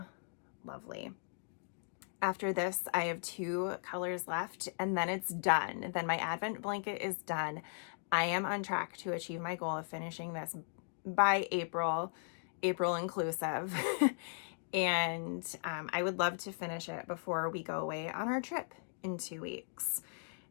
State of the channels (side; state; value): right; silent; digital silence